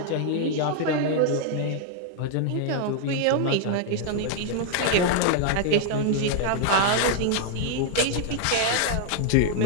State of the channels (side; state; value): both; different; correlation 0.00